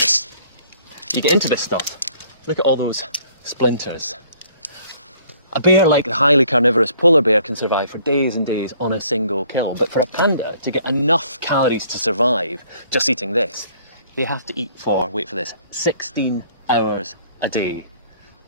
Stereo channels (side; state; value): both; inverted; correlation -0.59